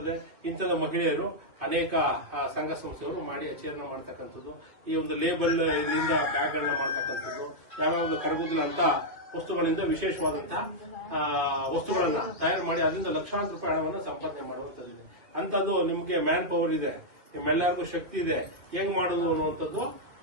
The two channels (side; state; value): left; late; 2.9 ms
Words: ಇಂಥದ ಮಹಿಳೆಯರು ಅನೇಕ ಸಂಘ ಸಂಸ್ಥೆಗಳು ಮಾಡಿ ಆಚರಣೆ ಮಾಡ್ತಕ್ಕಂಥದ್ದು. ಈ ಒಂದು ಲೇಬಲ್ ಇದರಿಂದ ಬ್ಯಾಗ್ಗಳನ್ನ ಮಾಡ್ತಕ್ಕಂಥದ್ದು, ಯಾವ್ಯಾವ ಕರಗುದಿಲ್ಲ ಅಂತ ವಸ್ತುಗಳಿಂದ ವಿಶೇಷವಾದಂತಹ ವಸ್ತುಗಳನ್ನ ತಯಾರು ಮಾಡಿ ಅದರಿಂದ ಲಕ್ಷಾಂತರ ರೂಪಾಯಿ ಹಣವನ್ನು ಸಂಪಾದನೆ ಮಾಡುವಂತದ್ದು. ಅಂತದ್ದು ನಿಮ್ಗೆ ಮ್ಯಾನ್ ಪವರ್ ಇದೆ, ನಿಮ್ಮೆಲ್ಲರಿಗೂ ಶಕ್ತಿ ಇದೆ, ಹೆಂಗ್ ಮಾಡುದು ಅನ್ನುವಂಥದ್ದು